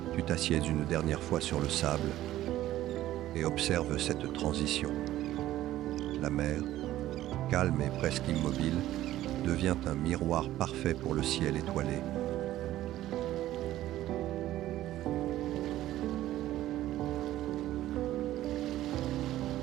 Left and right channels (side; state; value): left; quieter; 14.3 dB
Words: Tu t'assieds une dernière fois sur le sable et observes cette transition. La mer, calme et presque immobile, devient un miroir parfait pour le ciel étoilé.